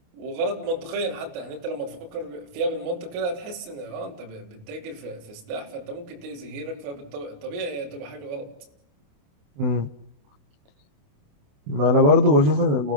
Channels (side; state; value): left; late; 28 ms